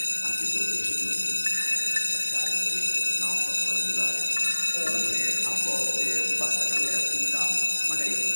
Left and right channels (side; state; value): both; inverted; correlation -1.00